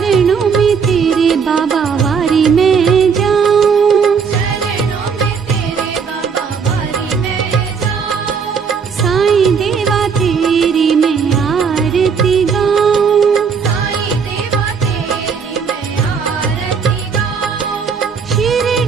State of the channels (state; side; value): quieter; left; 6.1 dB